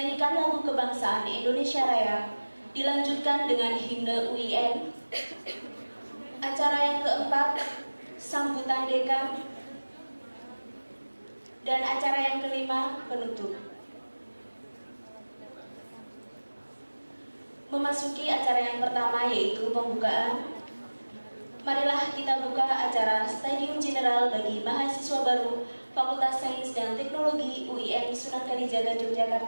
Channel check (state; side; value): inverted; both; correlation -1.00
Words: lagu kebangsaan Indonesia Raya, dilanjutkan dengan himne UIN. Acara yang keempat, sambutan dekan. Dan acara yang kelima, penutup. Memasuki acara yang pertama, yaitu pembukaan. Marilah kita buka acara Stadium General bagi mahasiswa baru Fakultas Sains dan Teknologi UIN Sunan Kalijaga,